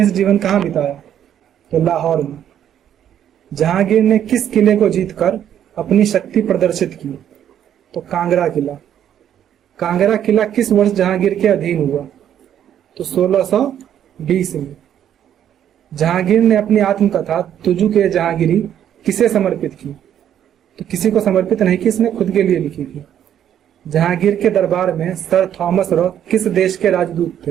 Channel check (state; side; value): quieter; left; 10.0 dB